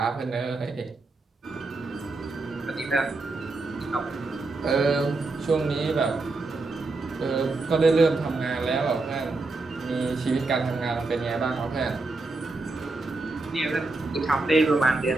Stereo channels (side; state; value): left; quieter; 3.4 dB